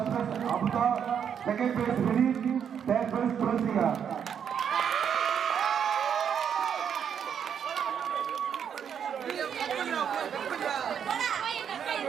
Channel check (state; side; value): quieter; left; 8.0 dB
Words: place Abutha, second prize Vineeth, third prize Thulasika.